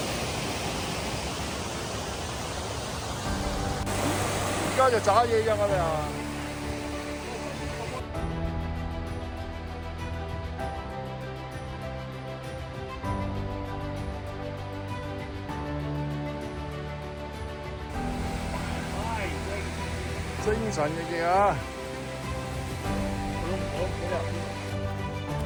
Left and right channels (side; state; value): both; identical; correlation 1.00